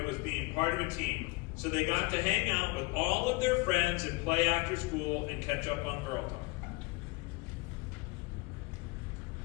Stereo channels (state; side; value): quieter; right; 24.6 dB